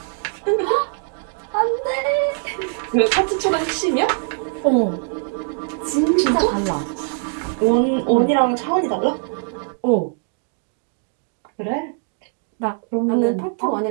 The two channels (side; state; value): left; silent; 59 dB below the other